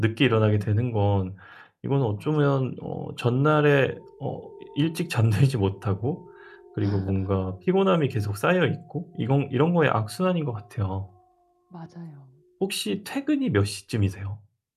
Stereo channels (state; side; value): identical; both; correlation 1.00